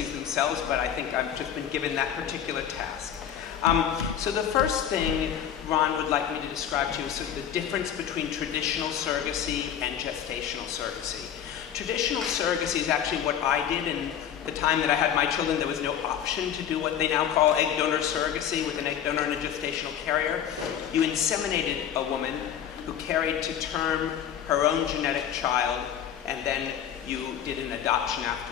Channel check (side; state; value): right; quieter; 9.3 dB